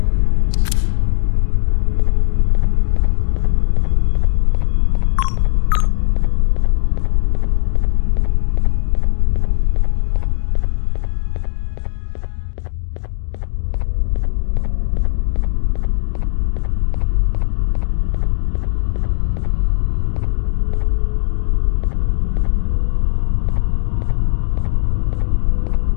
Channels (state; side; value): silent; right; digital silence